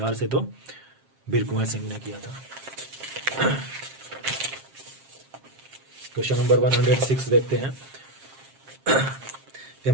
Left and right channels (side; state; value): left; late; 7.5 ms